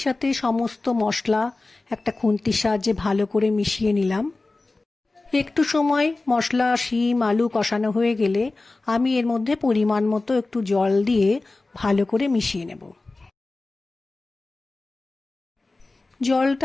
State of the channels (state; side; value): quieter; right; 3.3 dB